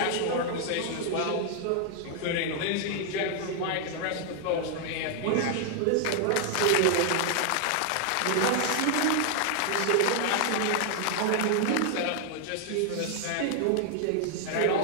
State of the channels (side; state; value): both; different; correlation 0.00